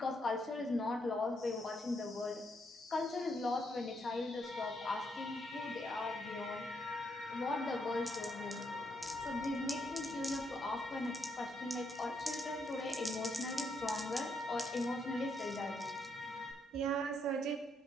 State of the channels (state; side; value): normal; both; correlation 0.76